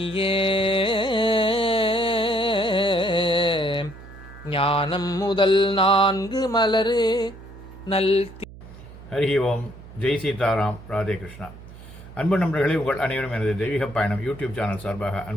ஞானம் முதல் 4 மலரு நல். ஹரி ஓம். ஜெய் சீதாராம். ராதே கிருஷ்ணா. அன்பு நண்பர்களே, உங்கள் அனைவரும் எனது தெய்வீக பயணம் யூடியூப் சேனல் சார்பாக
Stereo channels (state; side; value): noise; right; hum, 17 dB below the sound